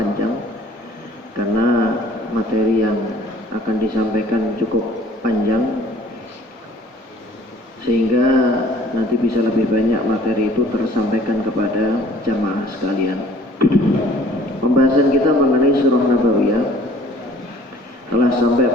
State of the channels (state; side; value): normal; both; correlation 0.54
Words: karena materi yang akan disampaikan cukup panjang, sehingga nanti bisa lebih banyak materi itu tersampaikan kepada jamaah sekalian. Pembahasan kita mengenai Surah Nabawiyah telah sampai